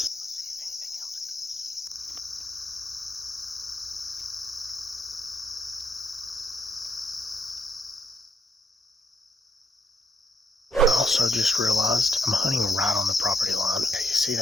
I also just realized I'm hunting right on the property line. You see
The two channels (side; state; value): both; normal; correlation 0.76